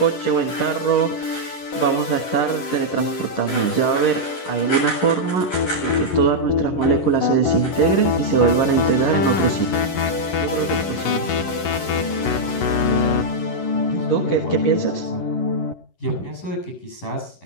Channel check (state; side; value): late; right; 11 ms